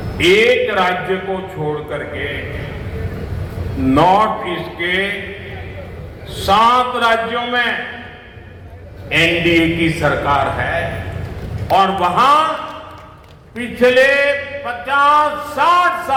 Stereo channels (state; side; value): identical; both; correlation 1.00